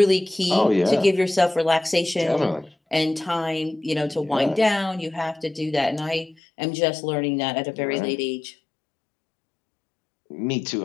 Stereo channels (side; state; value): right; drops out; at 6.4 s